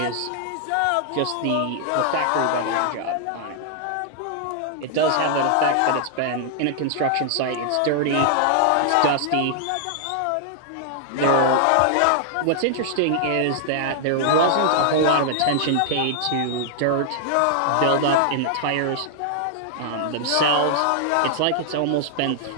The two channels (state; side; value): different; both; correlation -0.01